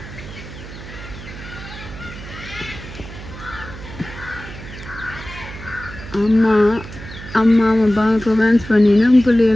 அம்மா அம்மா அப்பா ரொமான்ஸ் பண்ணினா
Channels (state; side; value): noise; right; hum, 13 dB below the sound